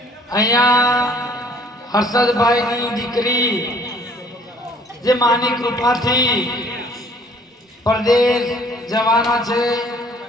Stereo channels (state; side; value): normal; both; correlation 0.57